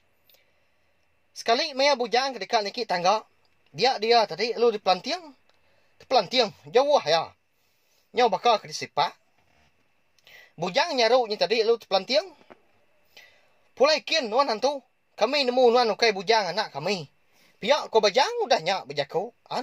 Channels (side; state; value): both; identical; correlation 1.00